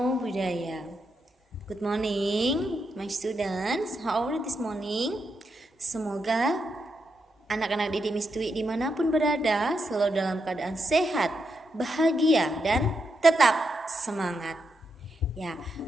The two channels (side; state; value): both; normal; correlation 0.83